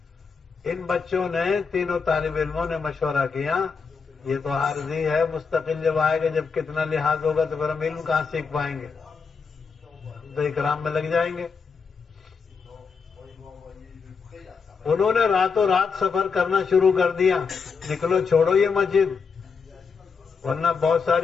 ان بچوں نے، تینوں طالب علموں نے مشورہ کیا یہ تو عارضی ہے، مستقل جب آئے گا، جب کتنا لحاظ ہوگا تو پھر ہم علم کہاں سیکھ پائیں گے، تو اکرام میں لگ جائیں گے۔ انہوں نے راتوں رات سفر کرنا شروع کر دیا، نکلو چھوڑو یہ مسجد ورنہ بہت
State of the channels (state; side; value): quieter; right; 5.4 dB